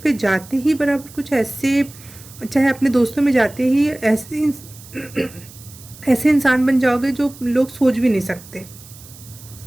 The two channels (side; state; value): right; noise; hiss, 20 dB below the sound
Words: जाते ही बराबर कुछ ऐसे, चाहे अपने दोस्तों में जाते ही ऐसे ऐसे इंसान बन जाओगे जो लोग सोच भी नहीं सकते।